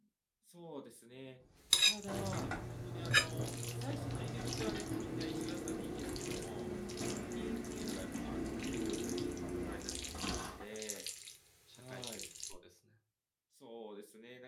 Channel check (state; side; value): identical; both; correlation 1.00